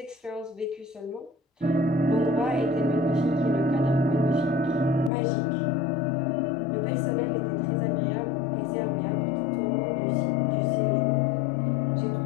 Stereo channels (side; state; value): right; drops out; at 5.1 s